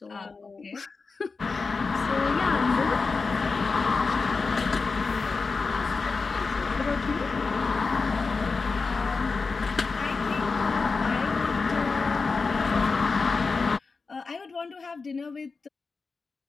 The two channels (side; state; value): right; quieter; 4.4 dB